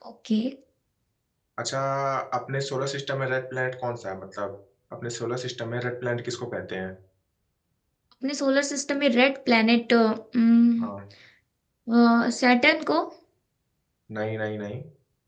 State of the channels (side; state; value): both; identical; correlation 1.00